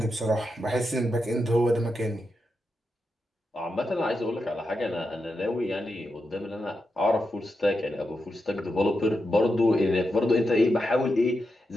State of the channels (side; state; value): both; normal; correlation 0.87